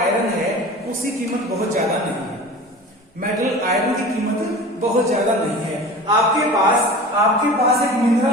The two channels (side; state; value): both; normal; correlation 0.37